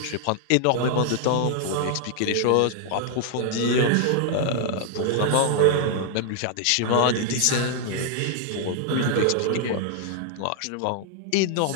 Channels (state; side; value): different; both; correlation 0.00